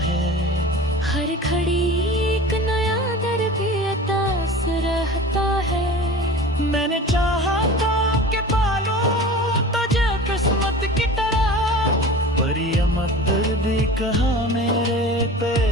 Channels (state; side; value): normal; both; correlation 0.37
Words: है, हर घड़ी एक नया दर्द अतास रहता है। मैंने चाहा था कि पालूं तुझे किस्मत की तरह, पर ये मकदर भी कहाँ मेरे पे